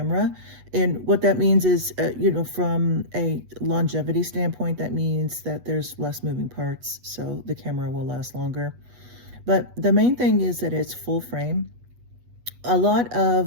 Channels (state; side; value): late; left; 8.2 ms